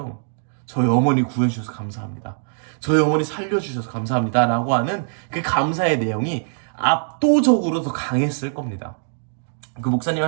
저희 어머니 구해주셔서 감사합니다. 저희 어머니 살려주셔서 감사합니다 라고 하는 그 감사의 내용이 압도적으로 더 강했을 겁니다. 그 목사님이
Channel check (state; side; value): silent; left; digital silence